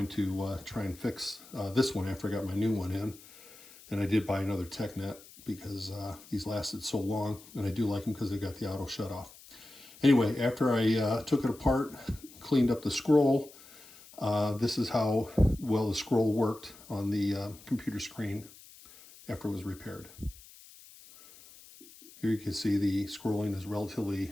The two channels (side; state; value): left; noise; hiss, 21 dB below the sound